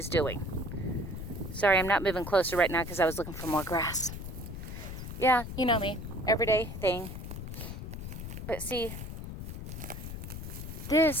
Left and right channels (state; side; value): noise; left; rumble, 8 dB below the sound